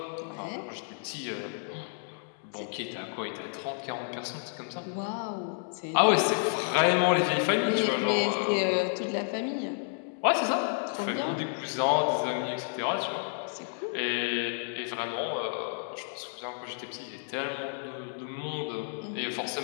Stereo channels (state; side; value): silent; right; 57 dB below the other